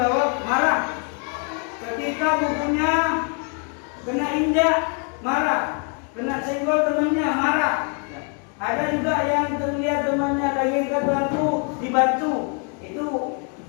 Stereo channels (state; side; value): quieter; right; 38.5 dB